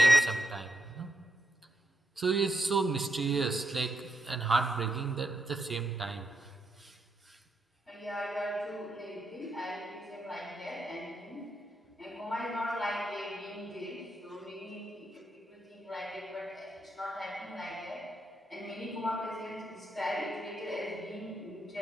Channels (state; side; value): normal; both; correlation 0.82